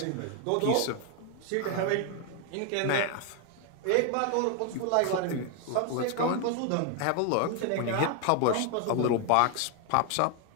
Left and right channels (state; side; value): different; both; correlation 0.01